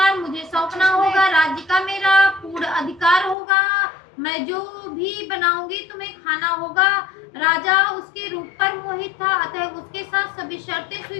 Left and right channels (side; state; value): right; drops out; at 3.4 s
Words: मुझे सौंपना होगा। राज्य का मेरा पूर्ण अधिकार होगा। मैं जो भी बनाऊंगी तुम्हें खाना होगा। राजा उसके रूप पर मोहित था, अतः उसके साथ सभी शर्तें